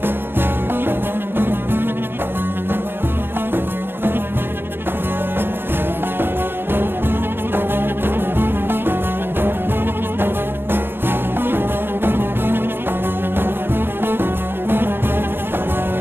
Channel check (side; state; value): left; late; 0.10 ms